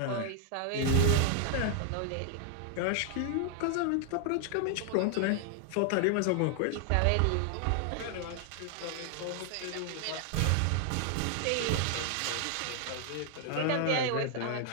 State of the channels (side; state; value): both; different; correlation 0.00